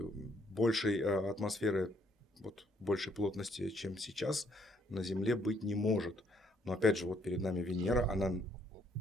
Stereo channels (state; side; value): normal; both; correlation 0.69